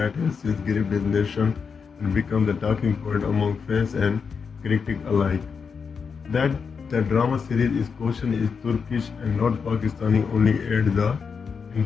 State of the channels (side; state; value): right; quieter; 5.8 dB